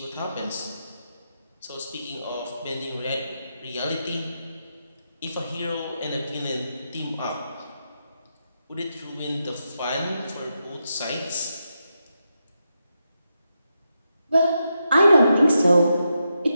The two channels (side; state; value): both; inverted; correlation -0.85